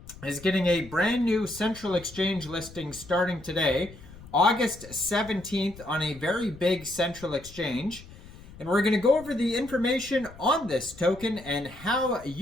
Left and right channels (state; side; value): noise; left; rumble, 18 dB below the sound